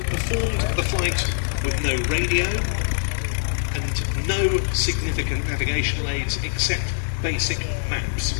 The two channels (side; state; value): right; silent; digital silence